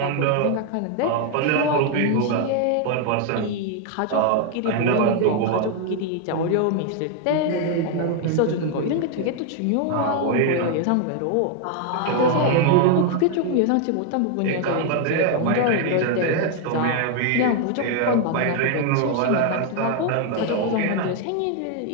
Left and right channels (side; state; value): both; different; correlation 0.00